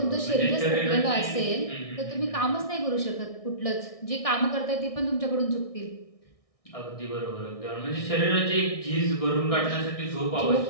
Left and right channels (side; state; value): right; late; 1.6 ms